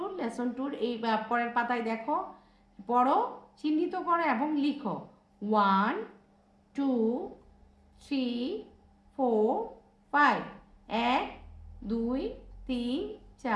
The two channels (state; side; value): identical; both; correlation 1.00